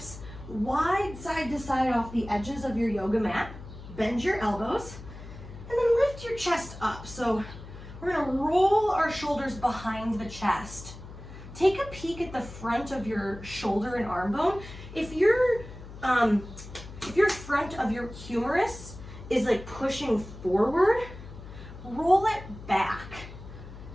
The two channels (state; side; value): noise; left; hum, 14 dB below the sound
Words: wide side to side off the edges of your yoga mat. Bend your elbows, and then lift your chest up. So we're gonna roll our shoulders behind the chest. Take a peek at the front of your shoulder and arm bone. If your front of your humerus is like pushing forward, roll it back